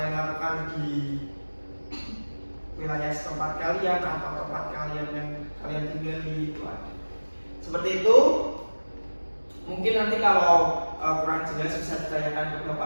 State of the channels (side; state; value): both; inverted; correlation -1.00